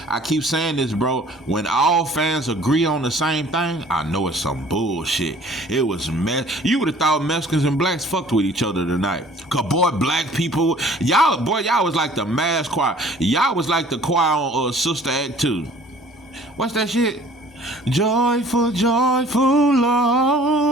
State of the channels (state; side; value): normal; both; correlation 0.52